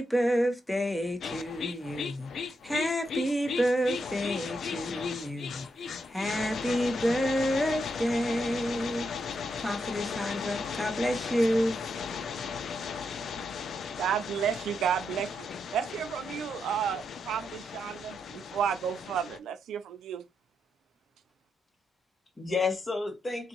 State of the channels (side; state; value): both; normal; correlation 0.82